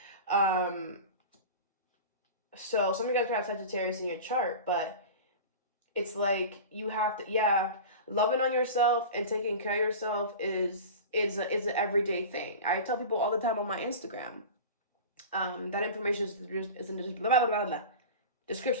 So some of you guys could have Sagittarius in your chart, but it's like you have to, yeah, loving on yourself and taking care of yourself is an everyday thing. I tell people all the time on my Instagram. That information is in the blah, blah, blah,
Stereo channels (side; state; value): both; inverted; correlation -0.32